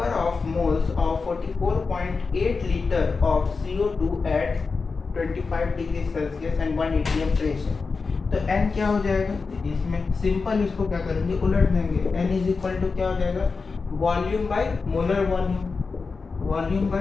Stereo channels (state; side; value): quieter; right; 4.5 dB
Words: of moles of 44.8 litre of CO2 at 25 degree Celsius and 1 atm pressure. तो N क्या हो जाएगा, इसमें सिंपल इसको क्या करेंगे उलट देंगे, N इज इक्वल टू क्या हो जाएगा volume by molar volume, volume